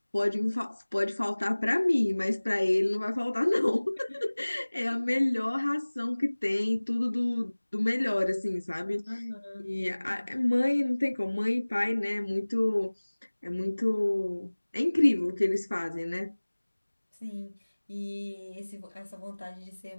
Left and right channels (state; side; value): inverted; both; correlation -1.00